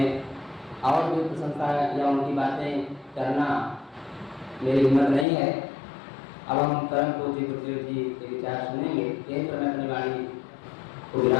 और भी प्रशंसा या उनकी बातें करना मेरी हिम्मत नहीं है। अब हम परम पूज्य गुरुदेव जी के विचार सुनेंगे। यहीं पर मैं अपनी वाणी को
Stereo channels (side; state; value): right; drops out; at 5.2 s